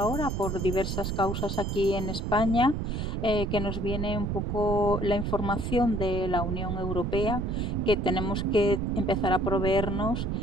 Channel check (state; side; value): noise; right; rumble, 2 dB below the sound